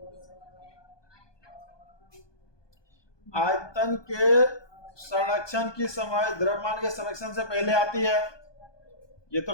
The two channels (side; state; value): right; late; 1.2 ms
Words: आयतन के संरक्षण की समय द्रव्यमान के संरक्षण से पहले आती है, ये तो